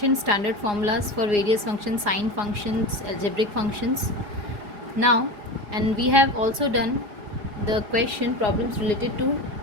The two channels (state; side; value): late; left; 4.9 ms